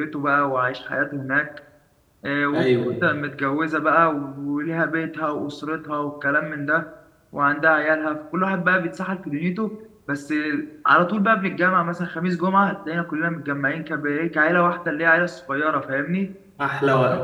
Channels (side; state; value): both; identical; correlation 1.00